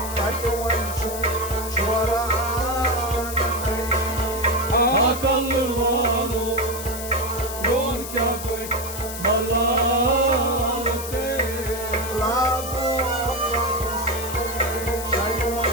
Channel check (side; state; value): left; noise; hiss, 9 dB below the sound